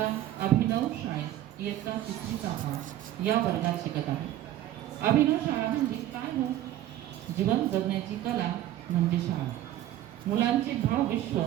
अभिनव शाळेत इयत्ता 3री या वर्गात शिकत आहे. अभिनव शाळा म्हणजे काय हो? जीवन जगण्याची कला म्हणजे शाळा. मुलांचे भावविश्व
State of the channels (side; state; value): left; quieter; 13.1 dB